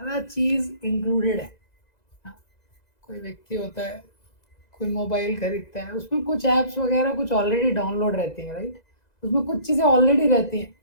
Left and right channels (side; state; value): right; late; 2.0 ms